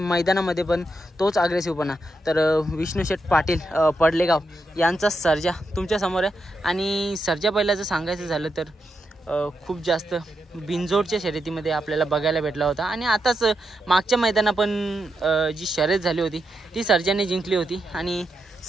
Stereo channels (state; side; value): normal; both; correlation 0.84